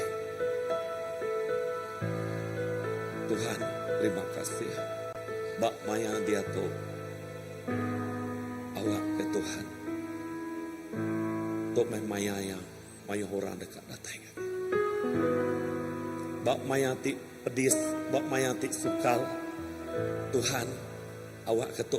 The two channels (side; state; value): both; identical; correlation 1.00